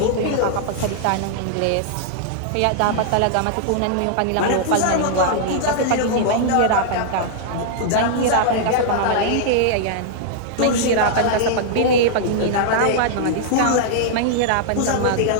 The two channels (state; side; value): different; both; correlation -0.01